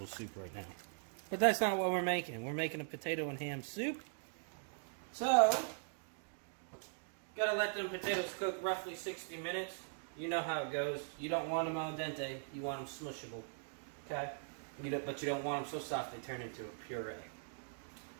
soup right now. But that's not what we're making. We're making a potato and ham soup. So, gotta let them potatoes cook roughly 60 minutes. You know how it goes. You don't want them al dente. You want them smushable. Okay? But you don't want them so soft they turn into a puree.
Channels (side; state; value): left; silent; digital silence